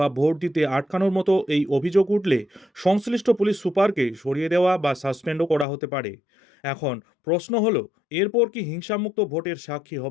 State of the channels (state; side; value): drops out; right; at 5.7 s